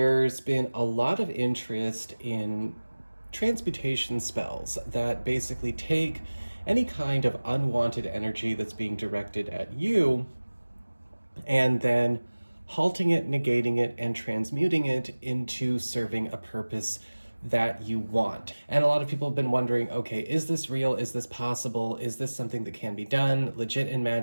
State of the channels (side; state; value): both; inverted; correlation -1.00